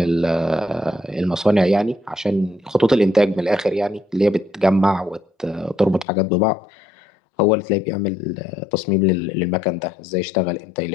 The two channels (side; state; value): right; drops out; at 6.1 s